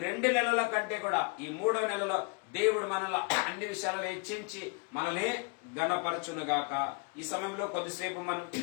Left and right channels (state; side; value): quieter; right; 31.8 dB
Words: 2 నెలల కంటే కూడా ఈ 3వ నెలలో దేవుడు మనల్ని అన్ని విషయాలలో హెచ్చించి మనల్ని ఘనపరచునుగాక. ఈ సమయంలో కొద్దిసేపు మనం